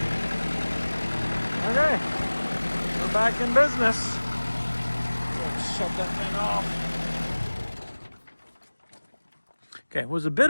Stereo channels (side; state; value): both; inverted; correlation -1.00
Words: Okay, we're back in business. Let's shut that thing off. Okay, it was a bit